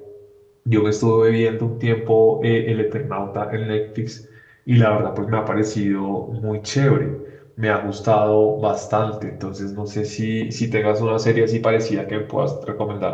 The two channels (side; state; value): both; identical; correlation 1.00